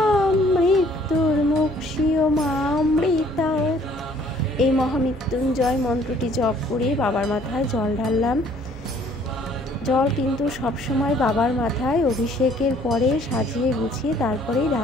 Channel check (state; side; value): normal; both; correlation 0.59